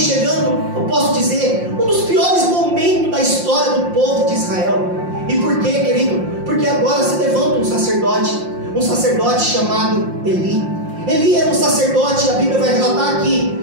chegando, eu posso dizer, um dos piores momentos da história do povo de Israel. E por quê, querido? Porque agora se levanta um sacerdote chamado Eli. Eli era um sacerdote, a Bíblia vai relatar que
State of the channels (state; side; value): late; left; 5.7 ms